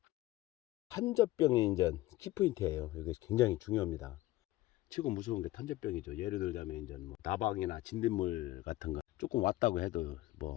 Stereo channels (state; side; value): quieter; right; 17.1 dB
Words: 탄저병이 이제 키포인트예요. 이게 굉장히 중요합니다. 최고 무서운 게 탄저병이죠. 예를 들자면 이제 뭐 나방이나 진딧물 같은 거 조금 왔다고 해도